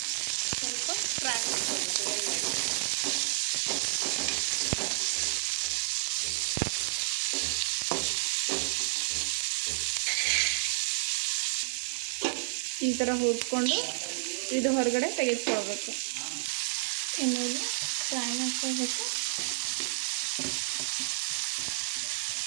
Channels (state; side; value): silent; left; digital silence